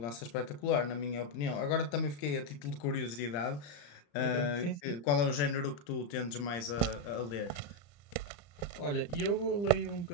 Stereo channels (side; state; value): right; late; 34 ms